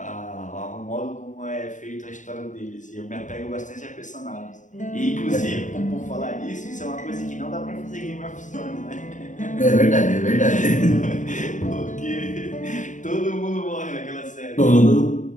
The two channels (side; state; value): right; late; 0.36 ms